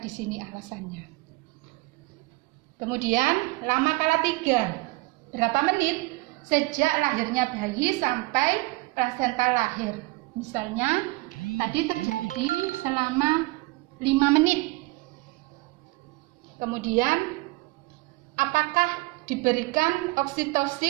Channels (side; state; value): left; quieter; 23.4 dB